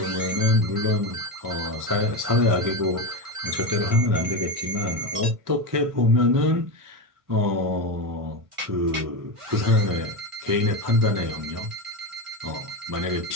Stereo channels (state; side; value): late; left; 1.5 ms